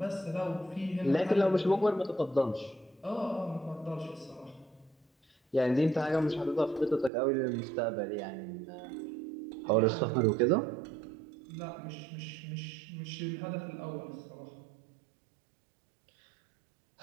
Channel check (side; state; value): left; drops out; at 7.1 s